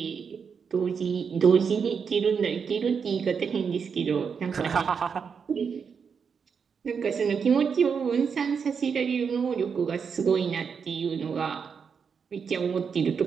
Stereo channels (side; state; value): left; quieter; 6.3 dB